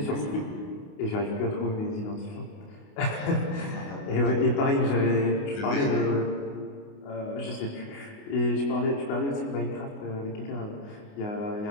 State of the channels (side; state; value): right; late; 28 ms